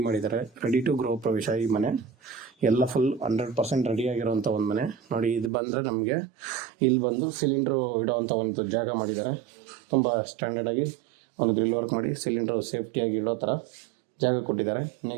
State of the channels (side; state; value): left; drops out; at 5.5 s